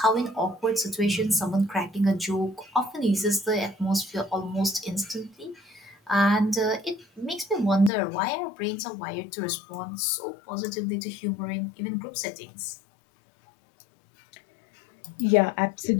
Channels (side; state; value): right; drops out; at 7.9 s